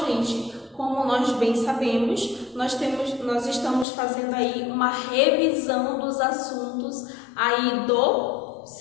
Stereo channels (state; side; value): drops out; right; at 3.9 s